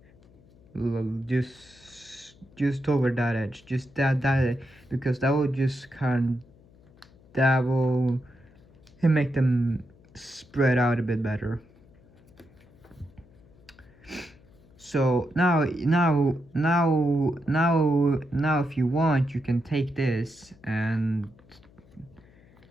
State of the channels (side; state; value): left; noise; hum, 27 dB below the sound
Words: just over that edge, just that because that will just that will make them spread out a bit better. So now if you want, you can take this and